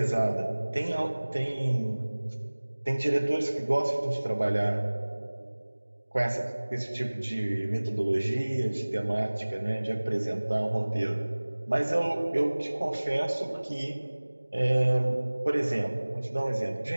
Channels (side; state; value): both; inverted; correlation -1.00